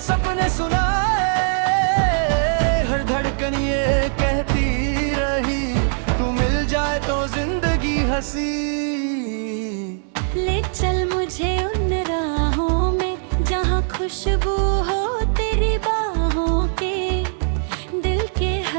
सुनाए, हर धड़कन ये कहती रही, तू मिल जाए तो जिंदगी हंसी। ले चल मुझे उन राहों में जहाँ खुशबू हो तेरी बाहों के, दिल के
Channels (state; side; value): silent; left; digital silence